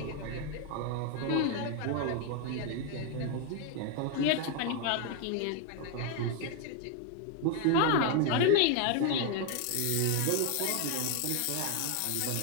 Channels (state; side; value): different; both; correlation 0.01